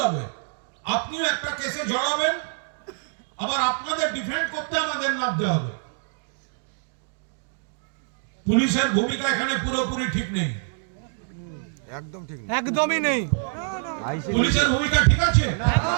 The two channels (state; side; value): silent; left; 61 dB below the other